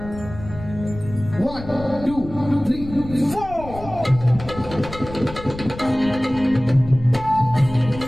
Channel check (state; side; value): noise; left; rumble, 13 dB below the sound